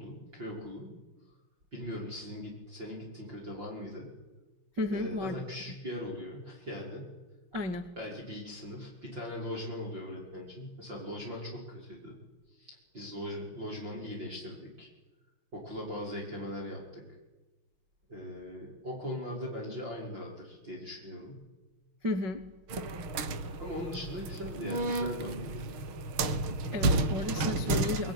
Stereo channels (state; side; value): late; left; 6.3 ms